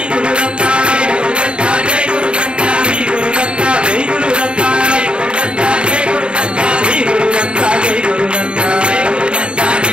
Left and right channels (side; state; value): left; late; 0.054 ms